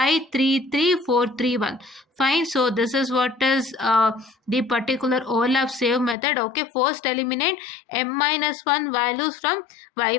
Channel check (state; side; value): drops out; right; at 6.2 s